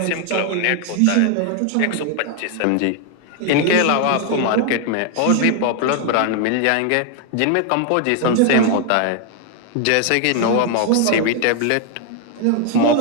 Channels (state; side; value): different; both; correlation 0.01